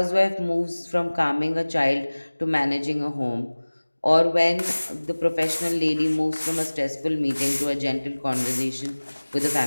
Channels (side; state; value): both; inverted; correlation -1.00